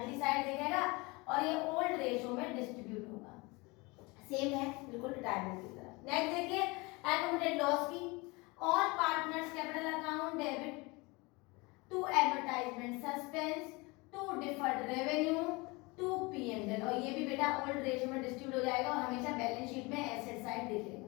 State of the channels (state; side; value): quieter; right; 25.4 dB